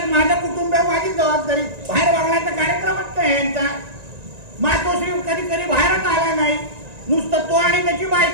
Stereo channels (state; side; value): late; left; 1.9 ms